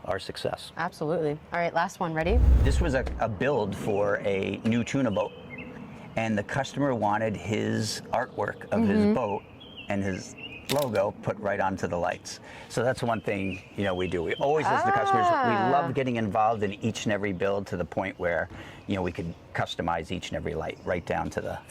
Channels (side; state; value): both; identical; correlation 1.00